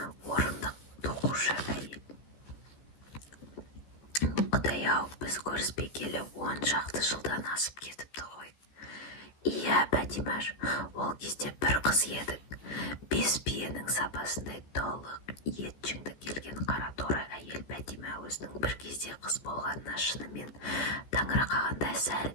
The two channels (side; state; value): right; late; 14 ms